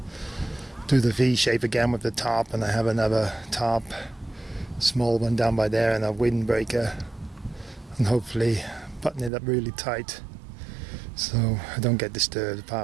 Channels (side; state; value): left; drops out; at 9.3 s